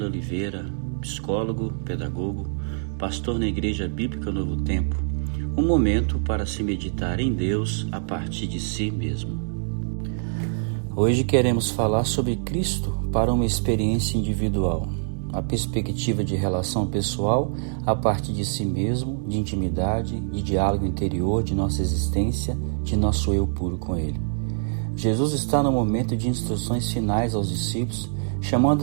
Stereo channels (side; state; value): left; silent; digital silence